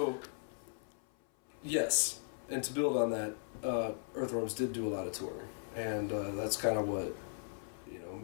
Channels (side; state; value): right; silent; 53 dB below the other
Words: yes, and to build on that, Earthworms did do a lot of touring, and that's kind of what